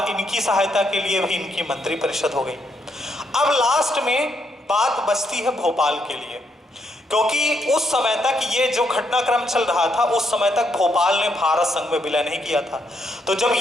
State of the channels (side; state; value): both; normal; correlation 0.76